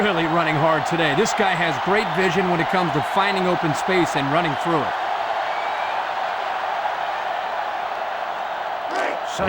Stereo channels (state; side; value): identical; both; correlation 1.00